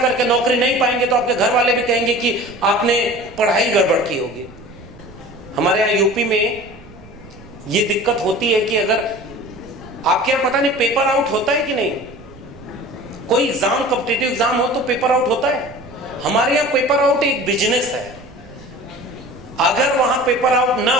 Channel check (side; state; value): right; noise; rumble, 20 dB below the sound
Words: करके नौकरी नहीं पाएंगे, तो आपके घर वाले भी कहेंगे कि आपने पढ़ाई गड़बड़ की होगी। हमारे यहां यूपी में ये दिक्कत होती है कि अगर आपके यहां पता नहीं पेपर आउट होता है कि नहीं, कोई एग्जाम, कॉम्पिटिटिव एग्जाम हो तो पेपर आउट होता है। हमारे यहां पेपर आउट एक बिजनेस है। अगर वहां पेपर आउट ना